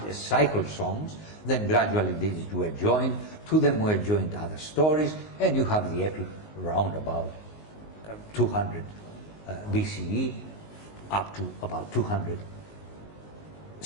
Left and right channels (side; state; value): right; late; 19 ms